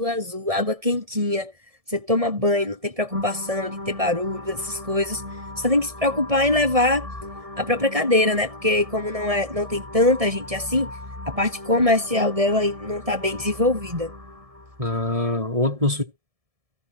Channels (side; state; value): left; late; 1.7 ms